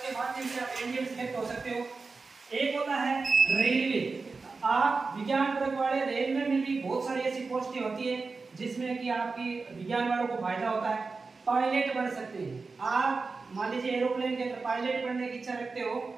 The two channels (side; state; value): left; quieter; 4.2 dB